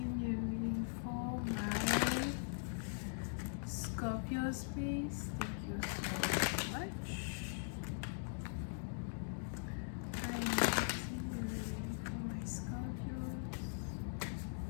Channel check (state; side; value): silent; right; digital silence